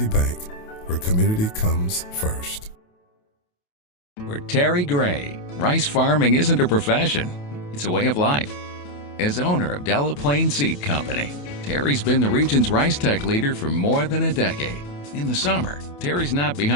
Bank, where community comes first. For Terry Gray, rice farming isn't a profession, it's a way of life. As owner of Delaplaine Seed Company, Terry's been the region's rice tech leader for more than a decade. In the summer, Terry's not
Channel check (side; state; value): right; late; 28 ms